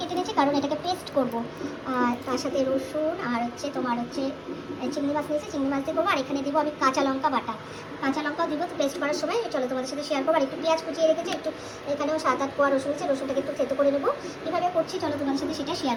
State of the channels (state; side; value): identical; both; correlation 1.00